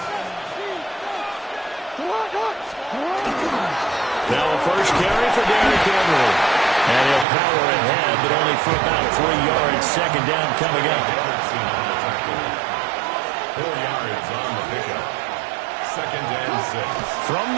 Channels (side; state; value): left; drops out; at 7.2 s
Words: Now a first carry for Derrick Henry. And he'll power ahead, but only for about 3 yards. Second down coming up. 4 yards on the pickup. Second and 6. From